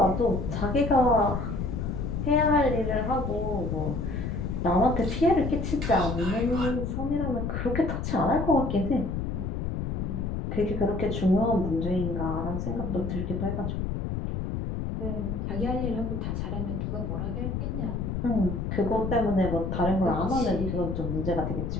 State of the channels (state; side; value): noise; left; rumble, 2 dB below the sound